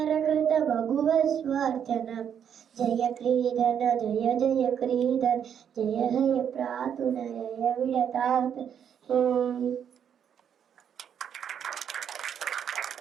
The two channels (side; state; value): left; quieter; 8.5 dB